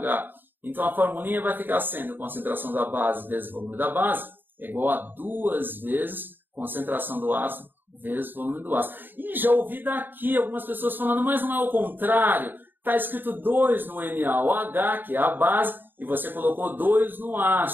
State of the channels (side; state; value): left; late; 0.093 ms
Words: Então a formulinha vai ficar sendo concentração da base vezes o volume da base é igual a 2 vezes concentração do ácido vezes volume do ácido. E já ouvi daqui algumas pessoas falando, mas não é o contrário. Está escrito 2 no NaOH, que é a base, e você colocou 2 no